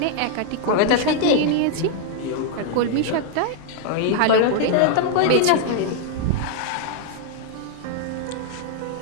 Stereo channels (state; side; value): different; both; correlation 0.00